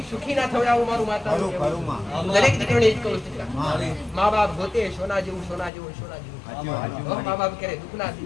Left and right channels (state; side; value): drops out; right; at 5.7 s